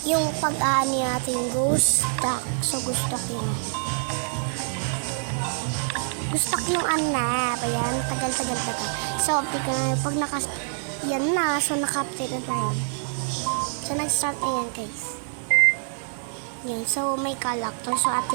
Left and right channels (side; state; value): left; silent; 61 dB below the other